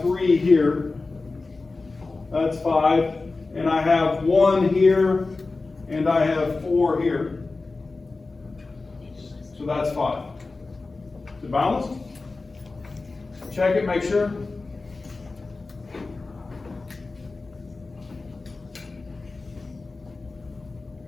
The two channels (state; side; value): quieter; right; 3.7 dB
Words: 3 here. That's 5. And I have 1 here, and I have 4 here. So that's 5. Is it balanced? Check it, make sure.